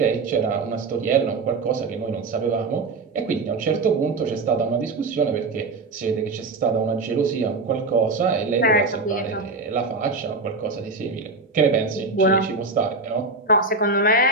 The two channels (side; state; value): left; quieter; 3.7 dB